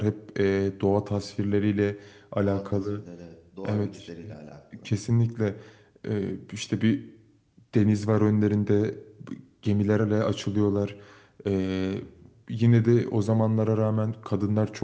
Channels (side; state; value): both; identical; correlation 1.00